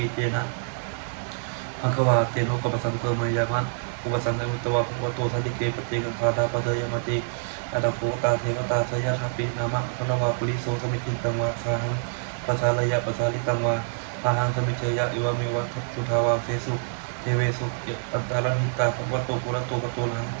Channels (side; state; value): left; silent; digital silence